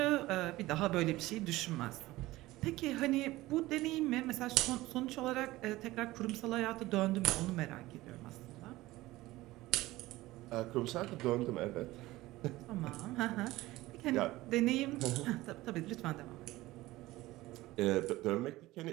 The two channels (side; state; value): left; quieter; 18.1 dB